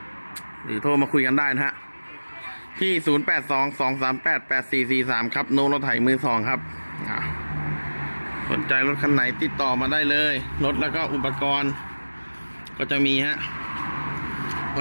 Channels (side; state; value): both; inverted; correlation -1.00